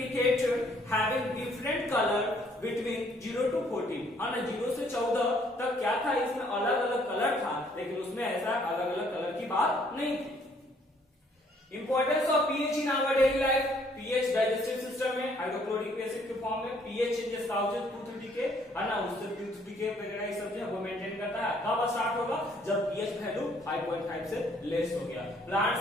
having different colour between 0 to 14, है ना, 0 से 14 तक क्या था, इसमें अलग अलग कलर था, लेकिन उसमें ऐसा अलग अलग कलर की बात नहीं थी। Importance of pH in our daily life, pH digestive system में हाइड्रोक्लोरिक एसिड के फॉर्म में, pH changes causes tooth decay, है ना, उससे टूथ डीके वगैरह ये सब जो है वो मेंटेन करता है। कब स्टार्ट होगा, जब पीएच वैल्यू 5.5 से लेस हो गया।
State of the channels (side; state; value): both; normal; correlation 0.64